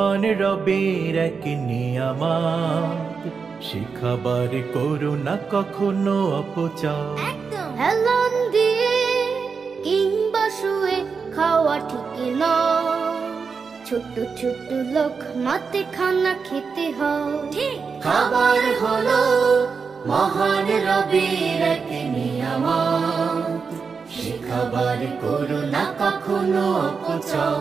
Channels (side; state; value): left; quieter; 5.4 dB